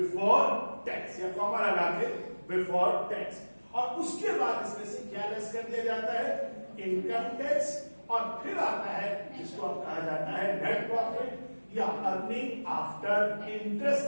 tax, या कॉमा लगा के बिफोर टैक्स। और उसके बाद इसमें से क्या लेस कर दिया जाता है, इनकम टैक्स, और फिर आता है जिसको अब कहा जाता है नेट प्रॉफिट या earning after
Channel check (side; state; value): both; inverted; correlation -1.00